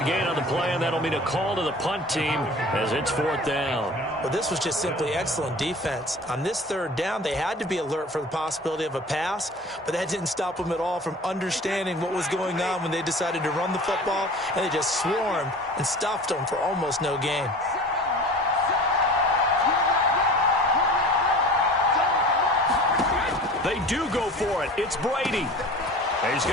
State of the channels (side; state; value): both; normal; correlation 0.41